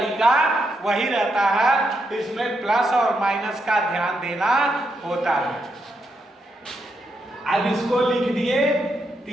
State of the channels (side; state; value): both; normal; correlation 0.81